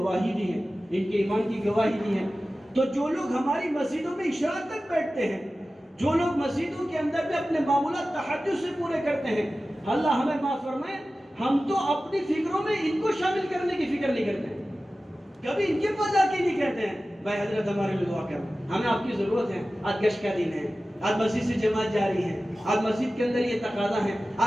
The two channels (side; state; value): both; normal; correlation 0.95